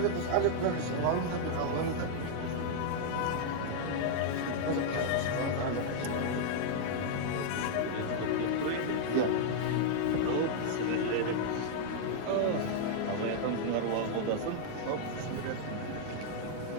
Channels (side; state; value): both; different; correlation -0.01